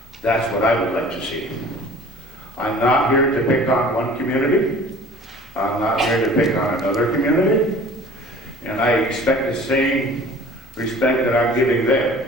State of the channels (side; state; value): both; normal; correlation 0.46